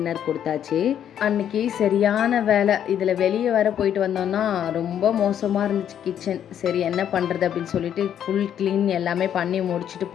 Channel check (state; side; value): quieter; right; 9.7 dB